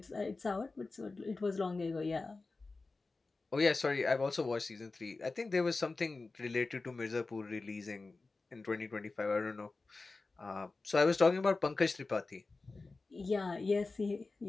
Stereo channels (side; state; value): right; quieter; 3.7 dB